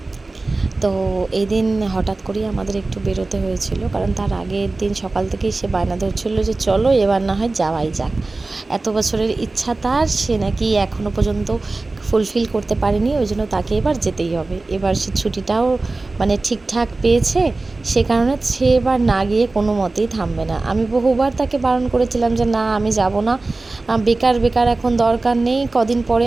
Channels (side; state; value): left; quieter; 3.3 dB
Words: তো এই দিন হঠাৎ করেই আমাদের একটু বেরোতে হয়েছিল, কারণ তার আগের দিন সকাল থেকেই সে বায়না ধরছিল যে চলো এবার না হয় যাওয়াই যাক। এত বছরের ইচ্ছা তার, সে নাকি এখনও পর্যন্ত ফুলফিল করতে পারেনি, ওই জন্য তাকে এবার যেতেই হবে। এবার সে ছুটিটাও মানে ঠিকঠাক পেয়েছে, সে কারণে সে এবার না গিয়ে কোনো মতেই থামবে না। আমি বহুবার তাকে বারণ করেছিলাম যে না, আমি যাব না, বেকার বেকার এখন দরকার নেই, কদিন পরে